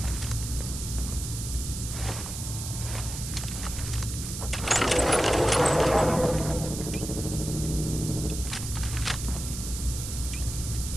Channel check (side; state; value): right; noise; hiss, 7 dB below the sound